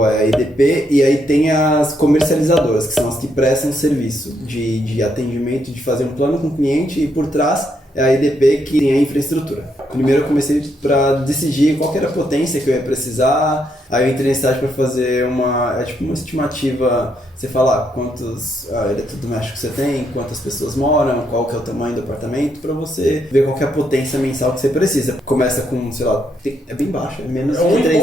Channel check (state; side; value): normal; both; correlation 0.76